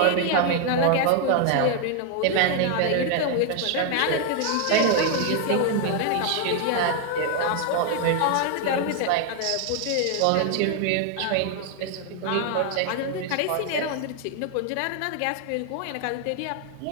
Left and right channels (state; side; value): different; both; correlation 0.00